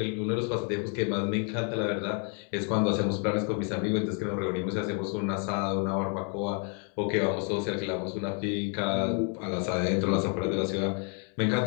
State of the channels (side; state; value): right; quieter; 39.6 dB